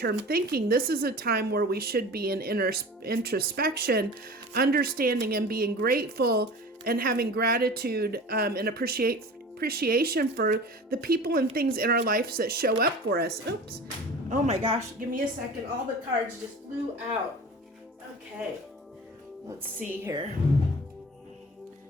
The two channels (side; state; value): both; normal; correlation 0.37